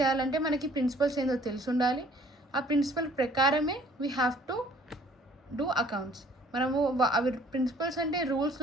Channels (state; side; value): normal; both; correlation 0.57